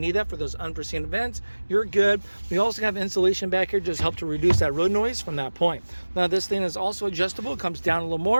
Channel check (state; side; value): inverted; both; correlation -1.00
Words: that for those unforeseen events. You're good. We also have insulation back here, just help to reduce that road noise from that point. Now, this thing is also adjustable. It comes down a little